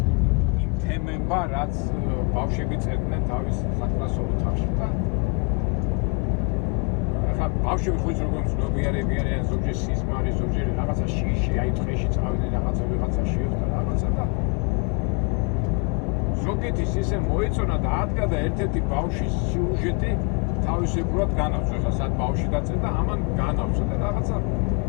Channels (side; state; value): right; quieter; 34.3 dB